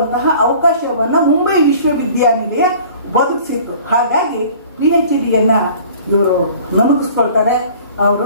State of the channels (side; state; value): both; inverted; correlation -0.48